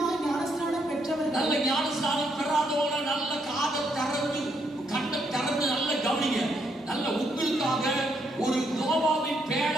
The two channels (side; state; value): both; normal; correlation 0.75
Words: ஞானஸ்நானம் பெற்றவர்கள், நல்ல ஞானஸ்நானம் பெறாதவங்க நல்ல காதை திறந்து கண்ணை திறந்து நல்ல கவனிங்க. நல்ல உங்களுக்காக ஒரு நோவாவின்